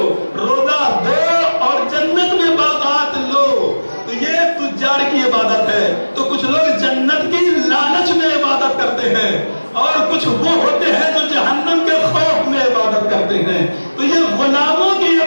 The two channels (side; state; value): both; inverted; correlation -1.00